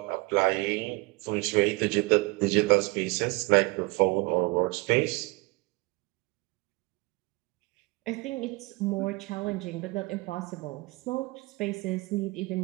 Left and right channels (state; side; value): quieter; left; 24.5 dB